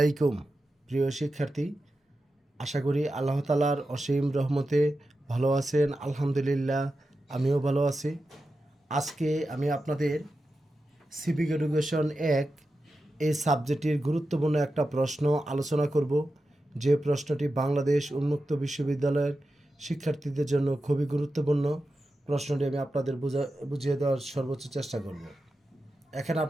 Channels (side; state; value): both; normal; correlation 0.91